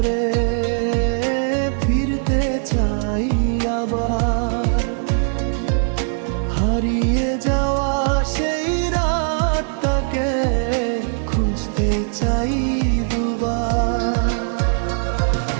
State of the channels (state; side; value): silent; left; digital silence